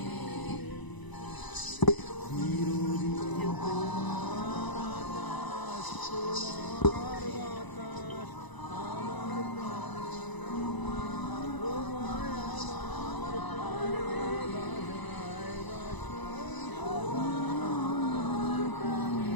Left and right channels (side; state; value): right; late; 1.0 ms